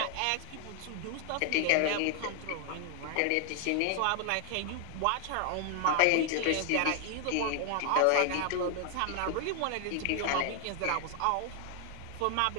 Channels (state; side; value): different; both; correlation 0.00